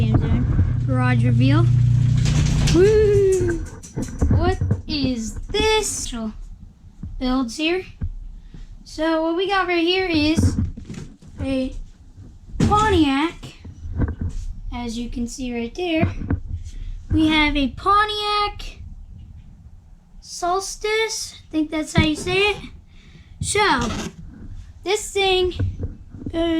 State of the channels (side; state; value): both; identical; correlation 1.00